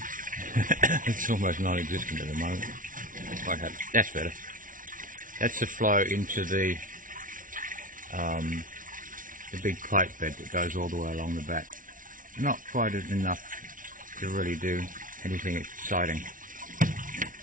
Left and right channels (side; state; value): left; late; 0.38 ms